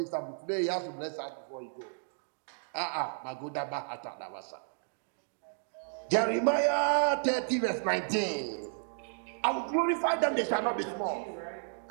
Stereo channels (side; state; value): left; silent; digital silence